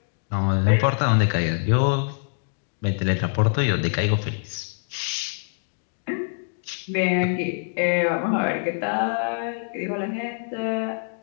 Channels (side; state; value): right; silent; digital silence